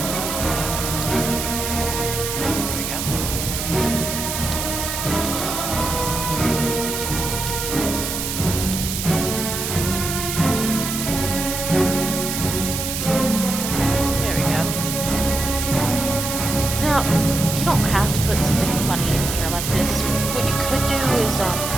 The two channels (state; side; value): noise; right; hiss, 3 dB below the sound